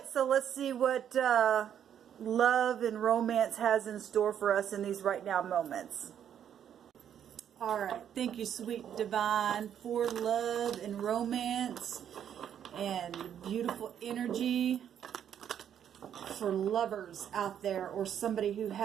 so let's see what love and romance has in store for us in these right now moments. All right, thank you, sweet divine, for love and romance and beautiful energy for lovers out there, or somebody who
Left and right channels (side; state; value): left; quieter; 9.3 dB